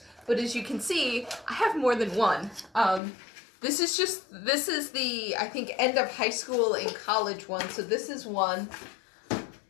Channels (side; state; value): right; drops out; at 3.0 s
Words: But as you can see, I have more than one. This is the, I think, end of high school and college one. So this is one.